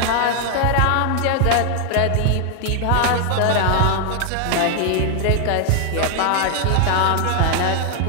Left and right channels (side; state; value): both; different; correlation 0.00